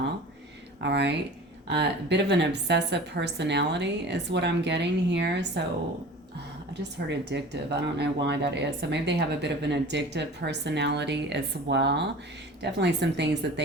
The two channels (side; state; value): both; normal; correlation 0.40